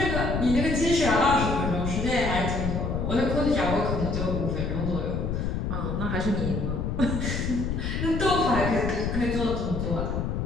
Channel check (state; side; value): noise; left; rumble, 1 dB below the sound